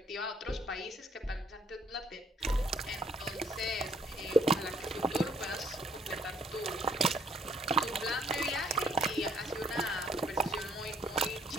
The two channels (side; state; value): both; normal; correlation 0.64